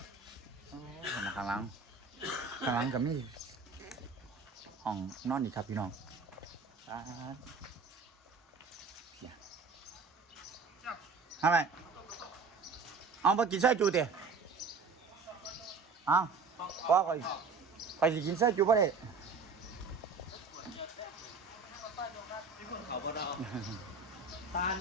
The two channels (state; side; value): quieter; left; 4.6 dB